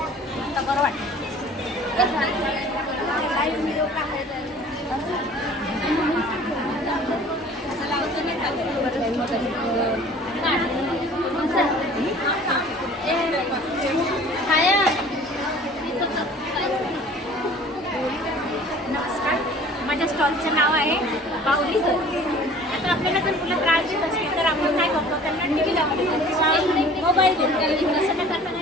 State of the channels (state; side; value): normal; both; correlation 0.48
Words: नमस्कार, माझ्या स्टॉलचं नाव आहे बाहुली घर. आता आपल्याला जर मुलं त्रास देत असतील तर आपण काय करतो, त्यांना टी व्ही लावतो, मोबाईल देतो. तसं न करता